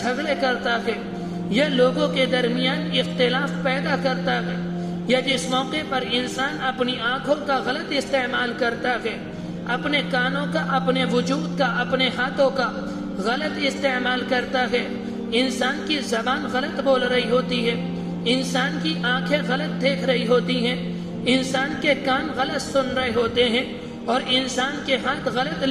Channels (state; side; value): identical; both; correlation 1.00